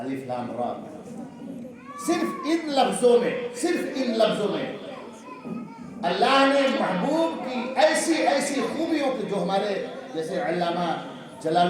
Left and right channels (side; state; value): both; identical; correlation 1.00